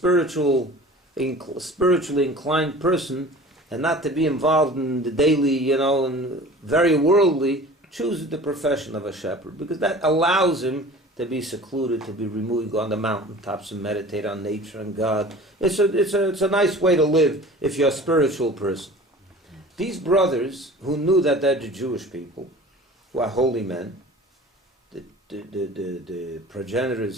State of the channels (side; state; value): both; normal; correlation 0.42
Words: inclined person, and not to be involved in the daily, and very worldly, chooses the profession of a shepherd, because that allows him to be secluded, to be removed, go on the mountaintops and meditate on nature and God. It's a nice way to live if you're a spiritual person. These brothers, who knew that they're the Jewish people, who are holy men, the progenitors